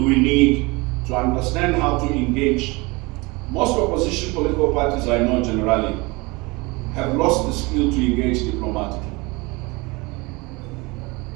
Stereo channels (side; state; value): left; quieter; 25.0 dB